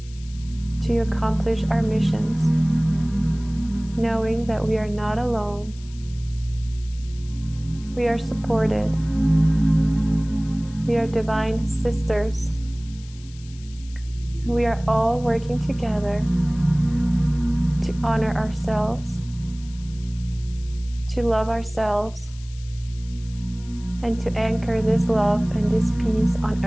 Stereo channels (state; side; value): noise; left; hiss, 23 dB below the sound